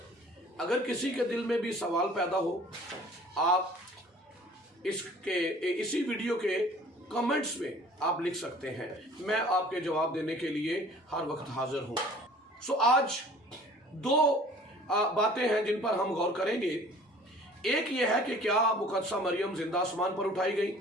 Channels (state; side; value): normal; both; correlation 0.49